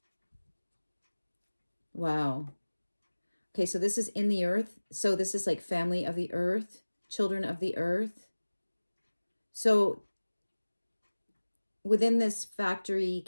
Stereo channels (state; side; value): inverted; both; correlation -1.00